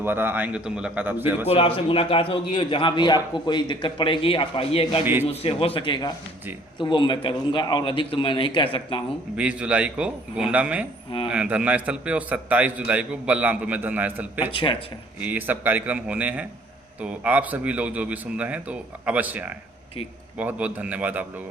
आएंगे तो मुलाकात आपसे बिल्कुल आपसे मुलाकात होगी, और जहाँ भी आपको कोई दिक्कत पड़ेगी आप आइएगा, जो मुझसे हो सकेगा जी तो वो मैं करूँगा, और अधिक तो मैं नहीं कह सकता हूँ। 20 जुलाई को गोंडा में धरना स्थल पे, और 27 जुलाई को बलरामपुर में धरना स्थल पे अच्छा अच्छा, ये सब कार्यक्रम होने हैं। तो आप सभी लोग जो भी सुन रहे हैं तो अवश्य आएँ। ठीक, बहुत बहुत धन्यवाद आप लोगों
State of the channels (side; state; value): both; normal; correlation 0.57